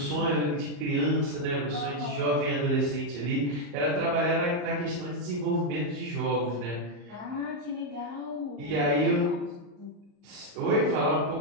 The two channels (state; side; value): late; left; 34 ms